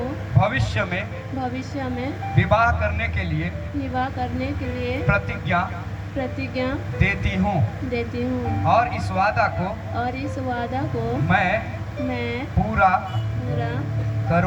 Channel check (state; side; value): identical; both; correlation 1.00